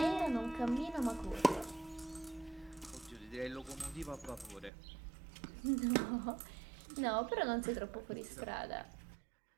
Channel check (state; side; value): drops out; left; at 4.7 s